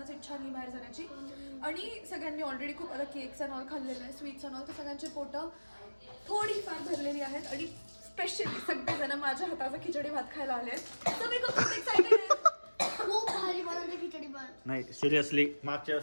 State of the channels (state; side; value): inverted; both; correlation -1.00